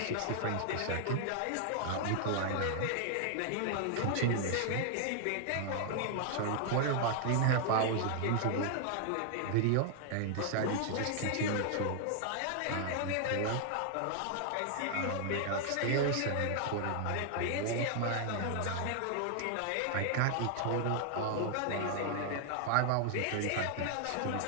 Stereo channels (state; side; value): different; both; correlation 0.00